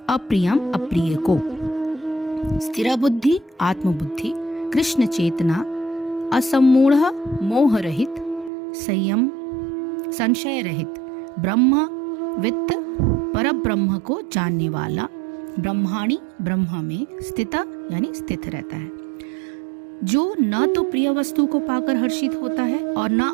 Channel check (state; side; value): drops out; left; at 8.5 s